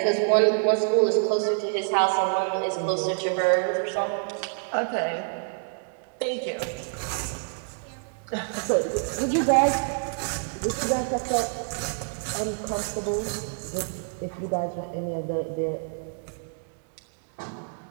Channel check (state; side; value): silent; left; digital silence